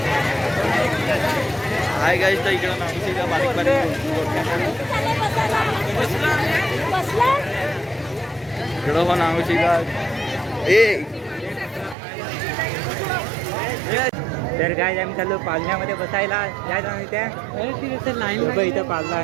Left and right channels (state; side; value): drops out; left; at 12.0 s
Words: हाय गाईस तर इकडं नागूची का बारीक इकडं पण नागूची का ए. तर काय आम्ही चाललो पालण्यामध्ये बसायला यायचं नाही त्या लाईन इथं पालना